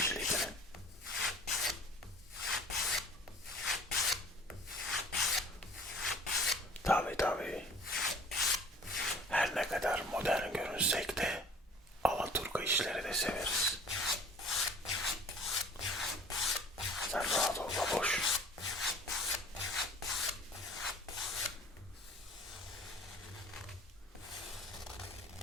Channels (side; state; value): both; normal; correlation 0.48